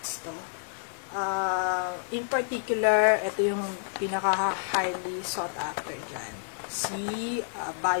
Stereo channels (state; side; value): silent; right; digital silence